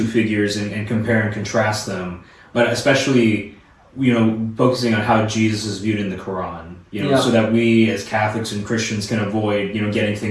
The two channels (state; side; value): identical; both; correlation 1.00